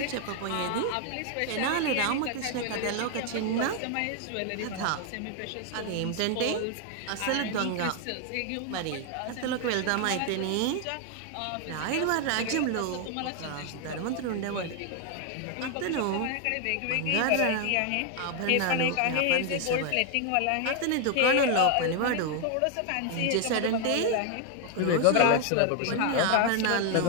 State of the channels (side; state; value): both; different; correlation 0.01